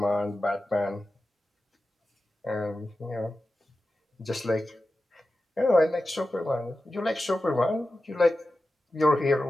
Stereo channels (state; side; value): normal; both; correlation 0.93